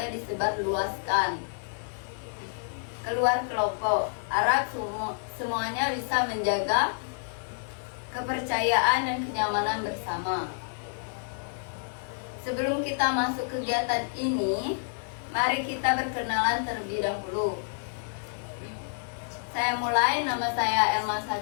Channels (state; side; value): silent; right; digital silence